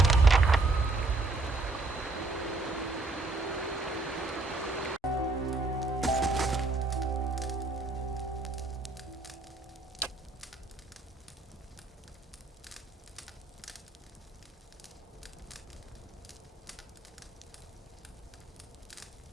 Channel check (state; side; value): quieter; left; 3.3 dB